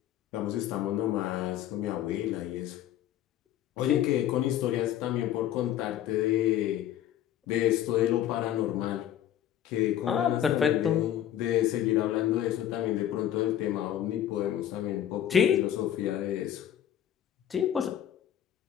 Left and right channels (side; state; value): right; quieter; 11.3 dB